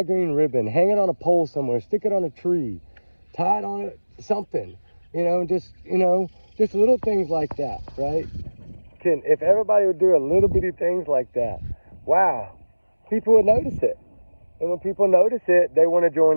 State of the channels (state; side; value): inverted; both; correlation -1.00